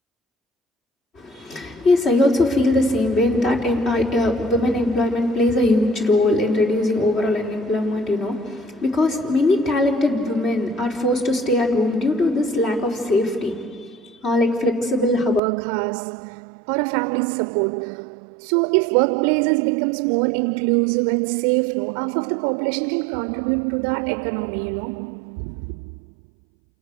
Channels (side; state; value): left; drops out; at 15.4 s